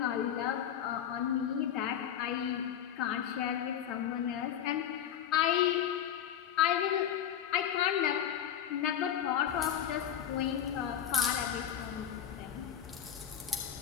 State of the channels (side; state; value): right; quieter; 9.7 dB